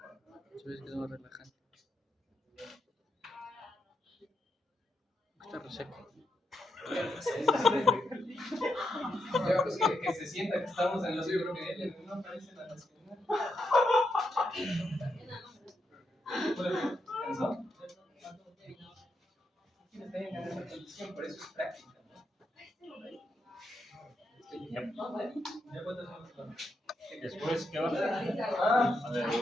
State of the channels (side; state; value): both; normal; correlation 0.81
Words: Subes que no relajante. Está reseco. Ya, pues que se sienta que estamos en los UPL, no aparece la nacional. ¿Cansó? Está en esa condición, por eso es práctica. Después, ¿qué va a hacer? Ah, A ver,